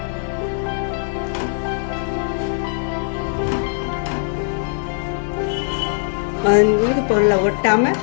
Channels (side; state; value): right; silent; digital silence